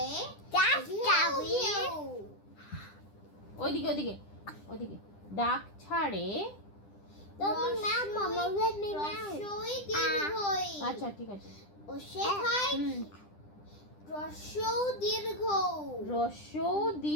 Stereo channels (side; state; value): right; late; 10 ms